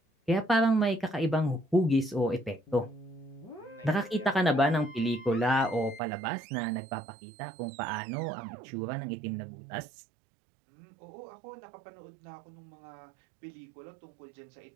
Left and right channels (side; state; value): left; drops out; at 6.0 s